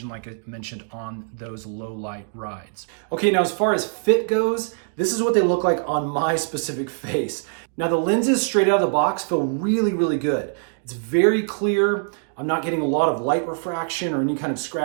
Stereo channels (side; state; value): left; silent; digital silence